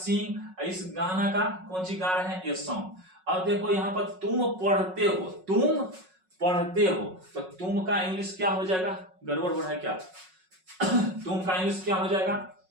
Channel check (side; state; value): left; late; 5.4 ms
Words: इस गाना का कौन सी गा रहे हैं, ये सॉन्ग। अब देखो यहाँ पर तुम पढ़ते हो, तुम पढ़ते हो, तो तुम का इंग्लिश क्या हो जाएगा, गड़बड़ हो रहा है क्या तुम का इंग्लिश क्या हो जाएगा,